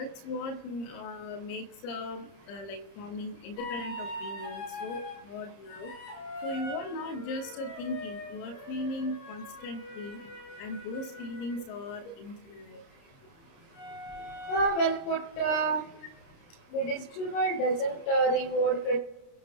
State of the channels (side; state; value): right; late; 30 ms